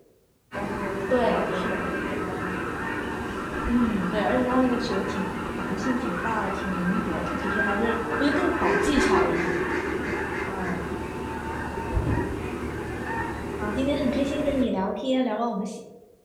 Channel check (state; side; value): identical; both; correlation 1.00